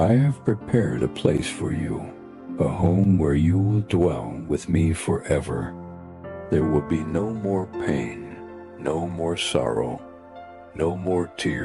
have prepared a place for you, a home where you will dwell with me forever. There will be no more pain, no more sorrow, no more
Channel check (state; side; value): identical; both; correlation 1.00